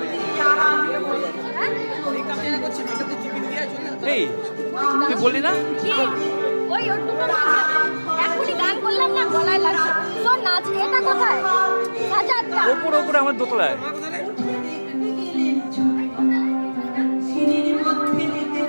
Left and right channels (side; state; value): both; inverted; correlation -1.00